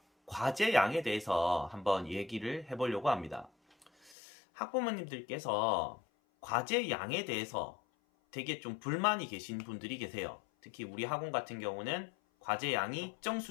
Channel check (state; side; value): drops out; right; at 4.2 s